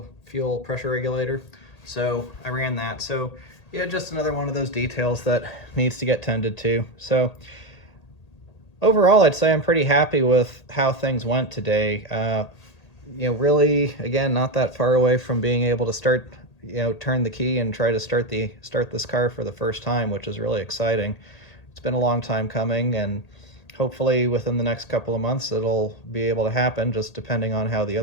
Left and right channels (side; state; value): right; late; 1.8 ms